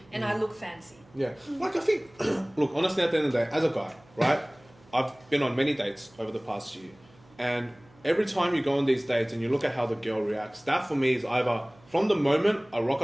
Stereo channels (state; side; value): noise; right; hum, 28 dB below the sound